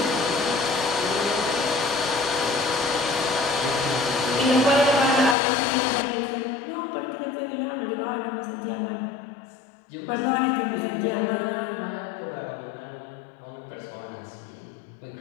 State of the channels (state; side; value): drops out; right; at 5.4 s